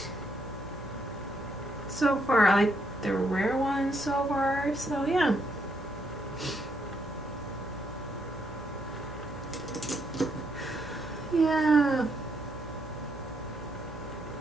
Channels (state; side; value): normal; both; correlation 0.75